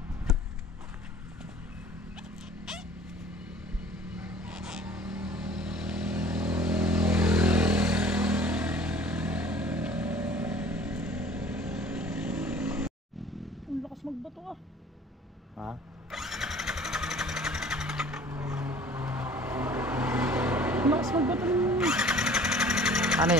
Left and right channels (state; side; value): normal; both; correlation 0.49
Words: Ang lakas magbato ah. Ha? Ang lakas magbato ng... Ano